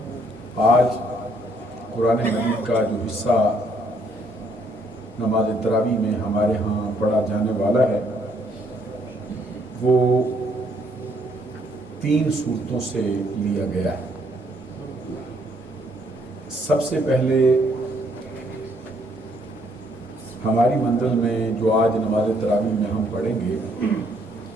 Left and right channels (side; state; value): both; normal; correlation 0.68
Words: آج قرآن مجید کا جو حصہ نماز تراویح میں ہمارے ہاں پڑھا جانے والا ہے وہ 3 صورتوں سے لیا گیا ہے. سب سے پہلے ہماری منزل میں جو آج نماز تراویح میں ہم پڑھیں گے